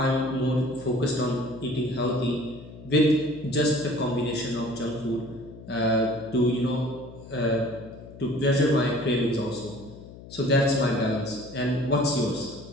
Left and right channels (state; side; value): noise; left; hum, 17 dB below the sound